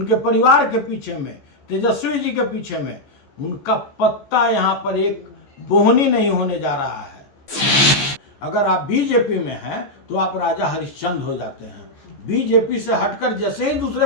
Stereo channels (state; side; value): late; right; 14 ms